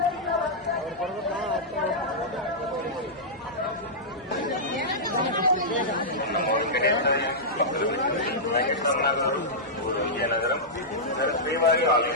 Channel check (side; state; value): left; noise; hum, 28 dB below the sound